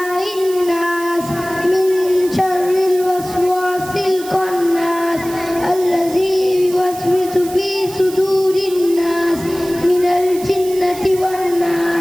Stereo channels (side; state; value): right; noise; hiss, 15 dB below the sound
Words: নাস, মিন শাররিল ওয়াসওয়াসিল খান্নাস, আল্লাযী ইউওয়াসওয়িসু ফী সুদুরিন নাস, মিনাল জিন্নাতি ওয়ান